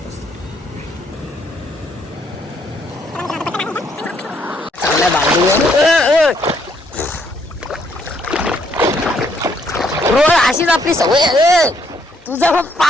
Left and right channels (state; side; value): normal; both; correlation 0.70